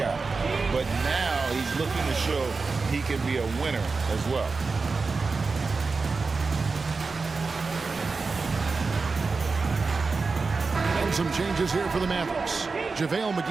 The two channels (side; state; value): left; quieter; 4.3 dB